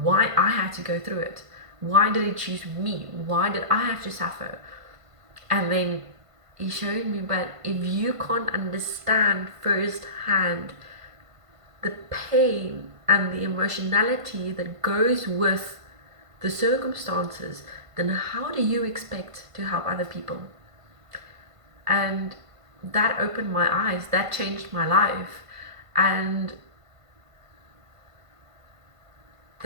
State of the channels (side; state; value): left; late; 1.5 ms